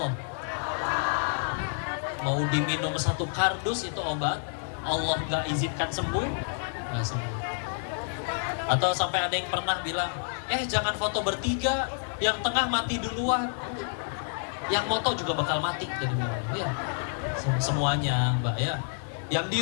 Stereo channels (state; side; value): silent; right; digital silence